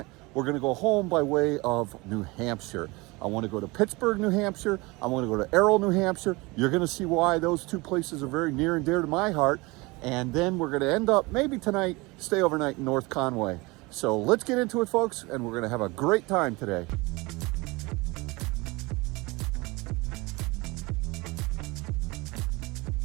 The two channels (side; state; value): left; quieter; 24.2 dB